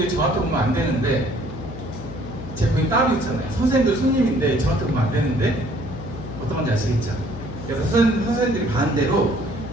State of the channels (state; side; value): noise; left; hum, 12 dB below the sound